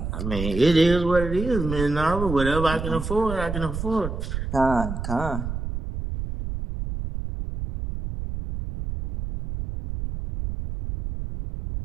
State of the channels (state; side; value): noise; right; rumble, 5 dB below the sound